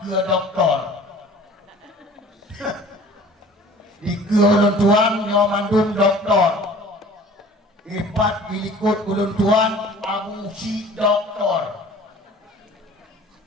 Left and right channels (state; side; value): normal; both; correlation 0.47